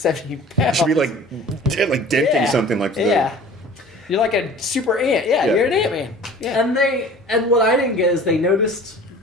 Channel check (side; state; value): both; normal; correlation 0.44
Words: it pounds, should be like denting something like that. Yeah, you're like a super ant. Yeah, Yeah. you're an Ant-Man. Yeah. And what I didn't get is they noticed